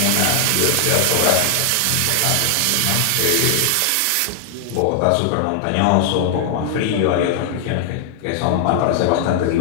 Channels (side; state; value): both; different; correlation 0.00